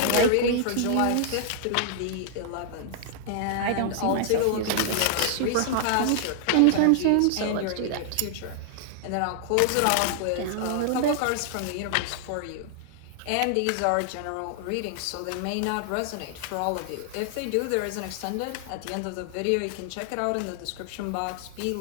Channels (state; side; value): different; both; correlation 0.00